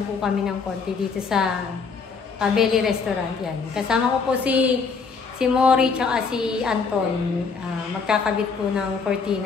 po kami ng konti dito sa Cabelli Restaurant. Yan, kasama ko po si Mori tsaka si Anton. Magkakabit po ng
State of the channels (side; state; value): right; quieter; 5.2 dB